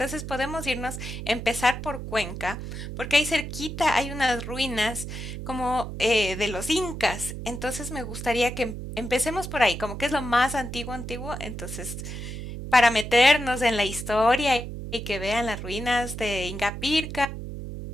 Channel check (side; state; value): right; noise; hum, 7 dB below the sound